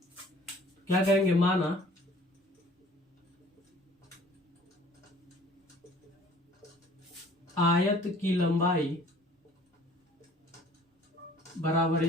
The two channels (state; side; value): normal; both; correlation 0.53